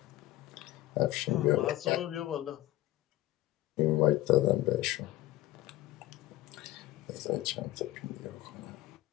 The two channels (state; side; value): quieter; right; 16.3 dB